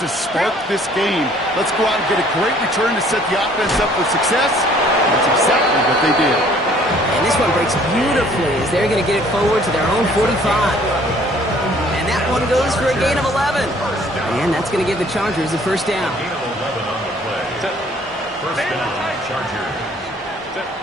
to spark this game. Let's go out and get a great return to set the offense up for success. That's exactly what they did. And this one breaks beautifully as they're going to get it forward to their own 45. And that one goes for a gain of 11. And that's going to give the Chargers the first down. First down, Chargers.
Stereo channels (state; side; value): normal; both; correlation 0.57